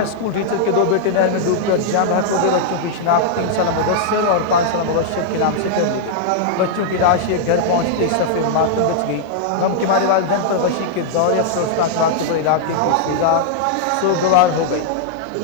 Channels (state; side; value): different; both; correlation -0.01